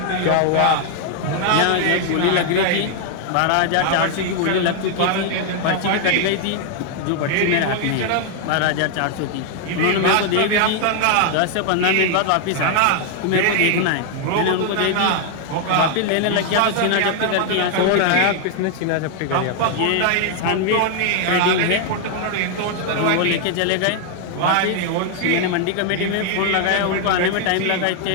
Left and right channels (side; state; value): both; different; correlation 0.00